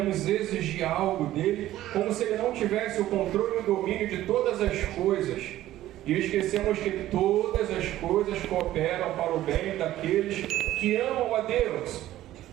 exigir algo dele, como se ele não tivesse o controle e o domínio de todas as coisas. E esquecemos que todas as coisas cooperam para o bem daqueles que amam a Deus.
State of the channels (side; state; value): left; quieter; 14.2 dB